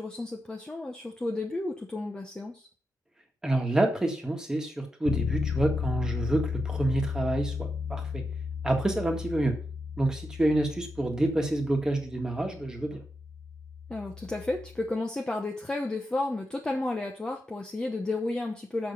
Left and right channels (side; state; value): both; normal; correlation 0.87